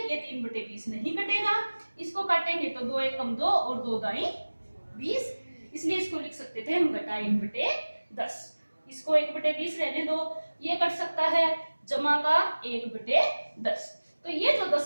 ये 3/20 नहीं कटेगा, इसको काटेंगे तो 2 एकम 2 और 2 दाई 20, इसलिए इसको लिख सकते थे हम घटा 1/10। इसको 1/20 रहने दो, ये कट सकता है, जमा का 1/10। तो ये जो 10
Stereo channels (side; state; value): both; inverted; correlation -1.00